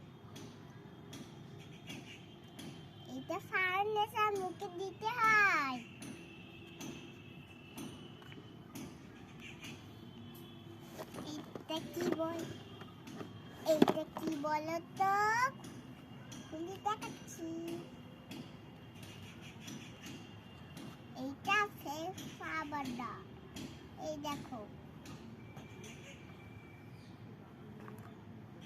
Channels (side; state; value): both; identical; correlation 1.00